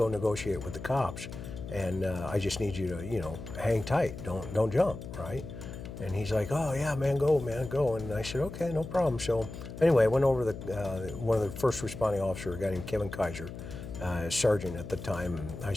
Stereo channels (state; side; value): noise; left; hum, 10 dB below the sound